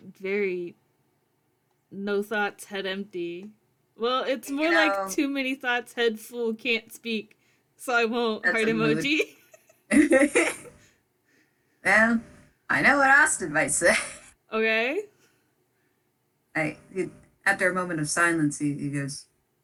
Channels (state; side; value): identical; both; correlation 1.00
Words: very no thoughts, head empty. Well, it's You more like know, too many thoughts, head full, can't speak. So I won't. that's Heart a mood. emoji. Well, I know what Austin might say. Okay. I, he, After a moment of silence, he goes,